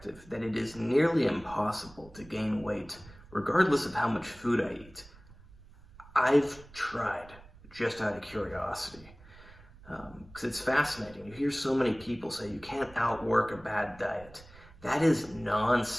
that it is nearly impossible to gain weight regardless of how much food I eat. I've tried just out of curiosity. Because it's fascinating. You hear so many people say you can't outwork a bad diet. That is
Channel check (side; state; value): right; noise; rumble, 22 dB below the sound